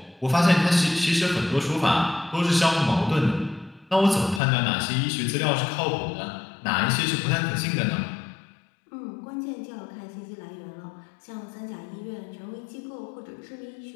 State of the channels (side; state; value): right; drops out; at 4.4 s